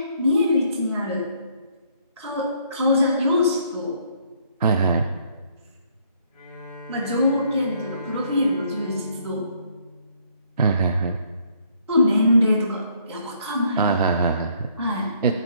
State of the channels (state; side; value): inverted; both; correlation -0.66